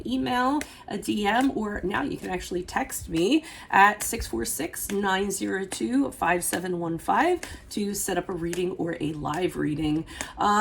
email, a DM, or now you can actually text me at 646-902-5715 to set up a reading or a live reading.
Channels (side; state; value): both; identical; correlation 1.00